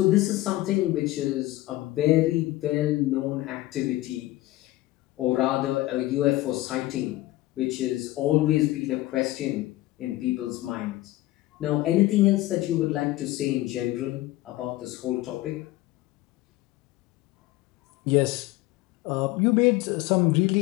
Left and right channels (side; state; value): right; quieter; 17.4 dB